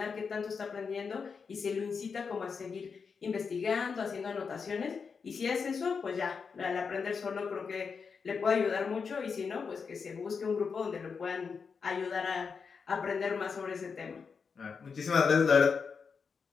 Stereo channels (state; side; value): quieter; right; 5.6 dB